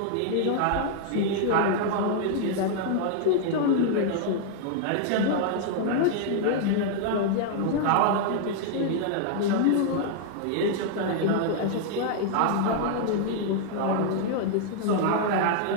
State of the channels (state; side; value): different; both; correlation -0.01